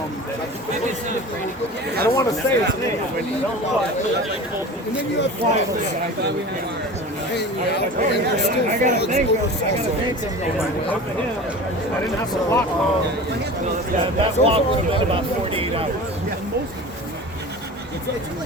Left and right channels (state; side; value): normal; both; correlation 0.35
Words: I don't want to say his name. and then you have frogs hanging out, and there's still frogs over I didn't have to walk long. Yeah, that walk was about 48 hours. I'm